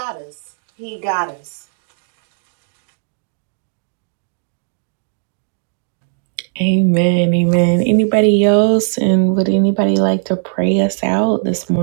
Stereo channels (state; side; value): silent; left; digital silence